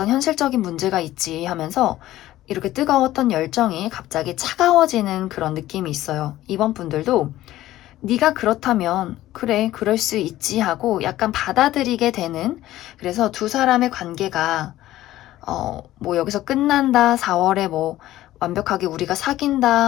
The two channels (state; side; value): quieter; right; 14.9 dB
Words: 현실적인 문제가 있지 하면서 이렇게 뜨거웠던 열정이 갑자기 차가워지는 그런 느낌이 있어요. 이번 분들도 네가 그렇다면 그래, 그럴 수 있지 하고 약간 받아들이게 되는, 그래서 두 사람의 관계가 뭐 여기서 끝난다, 4월에 뭐 완벽하게 우리가